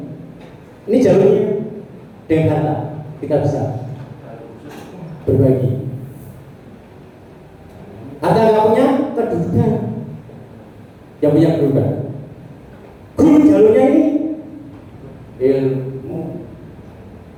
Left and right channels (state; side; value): identical; both; correlation 1.00